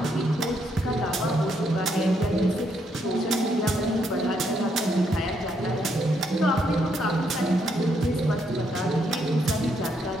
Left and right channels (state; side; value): normal; both; correlation 0.75